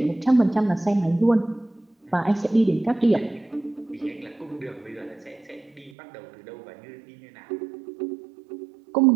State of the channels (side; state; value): left; drops out; at 5.9 s